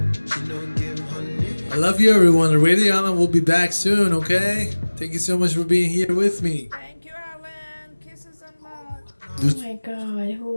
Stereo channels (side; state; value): both; inverted; correlation -1.00